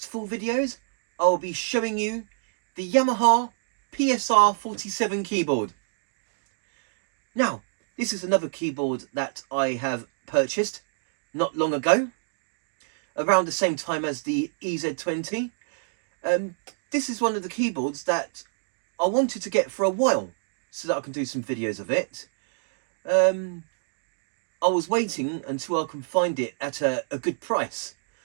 4 videos, I will be showing you the Yamaha PSR-47 keyboard. Now, this is another keyboard that I have purchased not long ago, around the same time as the EZ-20. This is one of the keyboards that I wanted to get for a while so that I can do some videos of it. I was waiting until I can find it at a good price.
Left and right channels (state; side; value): silent; left; digital silence